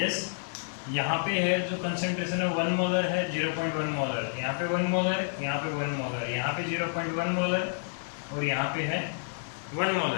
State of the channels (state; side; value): silent; right; 56 dB below the other